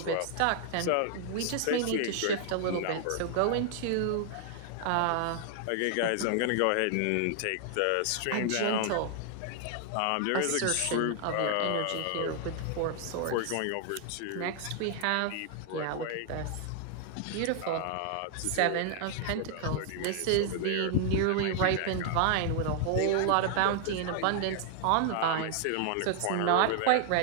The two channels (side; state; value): both; different; correlation 0.00